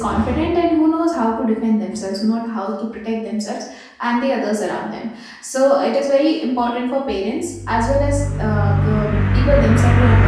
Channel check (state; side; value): identical; both; correlation 1.00